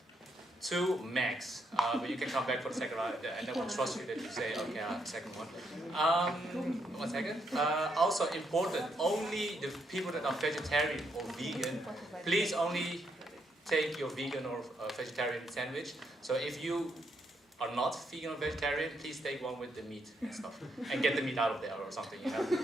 2 max, but you can come back for the second round, and then we'll trust you that you say, okay, I'll have the second one. 1 second. Also important, only the people that are vegetarian or vegan, please only take your vegan or vegetarian sandwich. So if you are not vegan or vegetarian, please take one with the meat and stuff, and get the meat out of there or something, you know,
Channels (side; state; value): both; normal; correlation 0.77